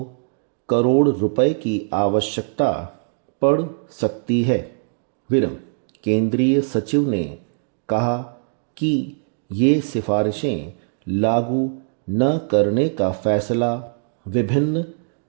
करोड़ रुपए की आवश्यकता पड़ सकती है। विरम, केंद्रीय सचिव ने कहा कि ये सिफारिशें लागू न करने का फैसला विभिन्न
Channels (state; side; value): silent; left; digital silence